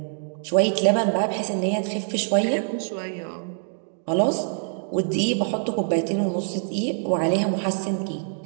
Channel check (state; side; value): silent; left; digital silence